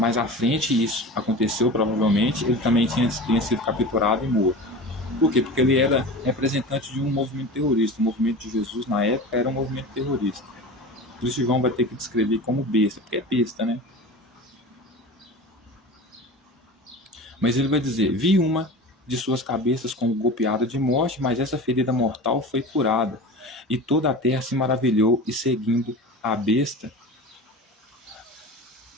à frente isso aconteceu, provavelmente, ele também tinha sido capturado e morto. Por quê? Porque ele era representante de um movimento terrorista. O movimento de Jesus, na época, era um movimento terrorista. Por isso João vai ter que descrever como besta, porque é besta, né? Mas ele vai dizer: vi uma de suas cabeças como golpeada de morte, mas essa ferida mortal foi curada. E toda a terra se maravilhou, e seguindo a besta,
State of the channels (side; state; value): both; normal; correlation 0.32